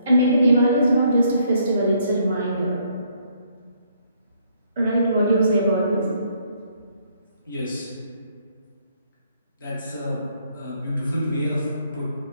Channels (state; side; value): inverted; both; correlation -0.68